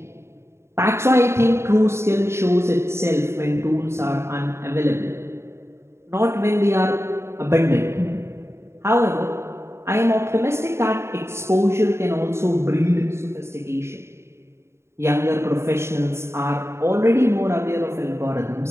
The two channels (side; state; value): left; late; 0.13 ms